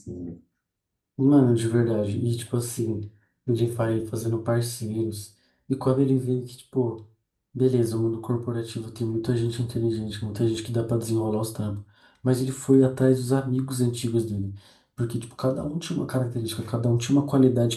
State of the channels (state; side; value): identical; both; correlation 1.00